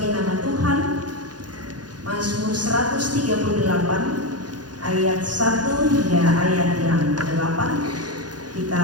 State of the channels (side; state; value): left; late; 0.69 ms